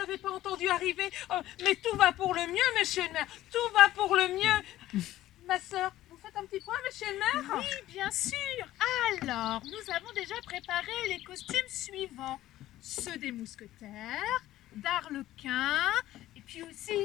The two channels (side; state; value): right; quieter; 14.6 dB